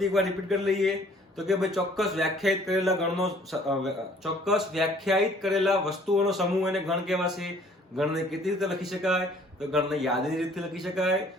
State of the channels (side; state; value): both; normal; correlation 0.57